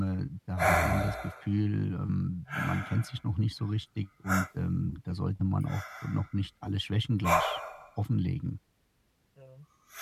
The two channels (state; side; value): identical; both; correlation 1.00